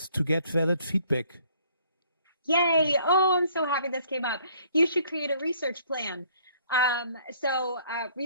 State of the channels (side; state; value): both; inverted; correlation -0.61